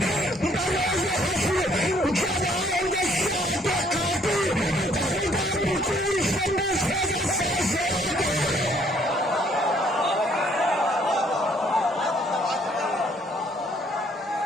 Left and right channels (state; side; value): normal; both; correlation 0.64